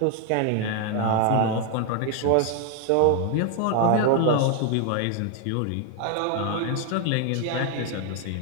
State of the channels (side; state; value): both; different; correlation 0.00